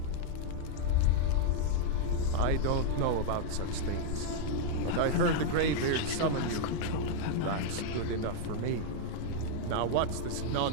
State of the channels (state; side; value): different; both; correlation 0.00